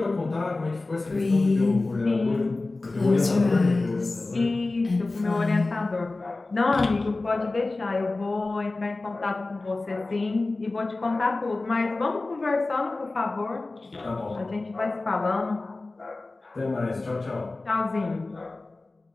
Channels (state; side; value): quieter; right; 3.2 dB